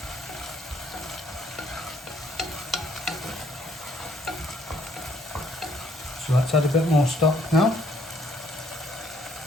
So let's add a bit more stock now.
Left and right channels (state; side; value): normal; both; correlation 0.65